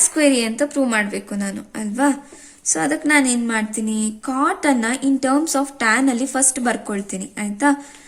square A ಅಂತ ಪ್ರೂವ್ ಮಾಡಬೇಕು ನಾನು, ಅಲ್ವಾ. ಸೊ ಅದಕ್ಕೆ ನಾನು ಏನ್ ಮಾಡ್ತೀನಿ, ಕಾಟ್ ಅನ್ನ ಇನ್ ಟರ್ಮ್ಸ್ ಆಫ್ ಟ್ಯಾನ್ ಅಲ್ಲಿ ಫಸ್ಟ್ ಬರ್ಕೊಳ್ತೀನಿ, ಆಯ್ತಾ.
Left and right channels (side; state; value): both; identical; correlation 1.00